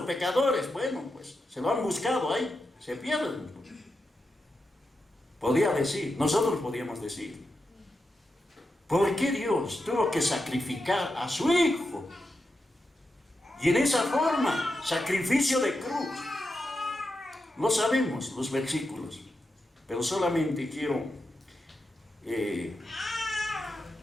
pecadores. Bueno, pues se lo han buscado ahí, se pierden. Podía decir, nosotros podíamos decir, ¿por qué Dios tuvo que sacrificar a su Hijo? Y en esa forma, sacrificio de cruz. No sabemos los versículos, pero solamente quiero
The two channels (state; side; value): normal; both; correlation 0.88